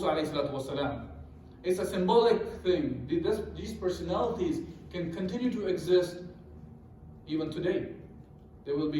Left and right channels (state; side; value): identical; both; correlation 1.00